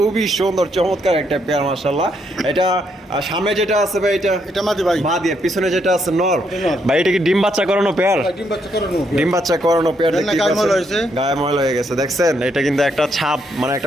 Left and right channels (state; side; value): normal; both; correlation 0.75